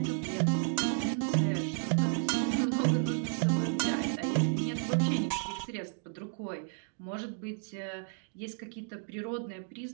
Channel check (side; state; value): left; silent; 56 dB below the other